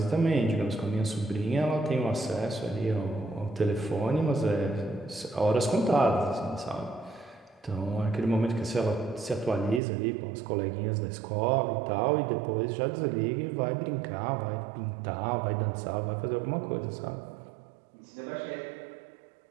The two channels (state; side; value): drops out; left; at 9.8 s